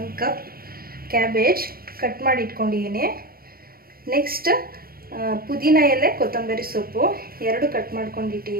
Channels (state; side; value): late; left; 0.43 ms